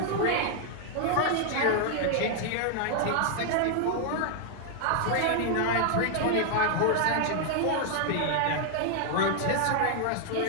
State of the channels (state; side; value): different; both; correlation 0.00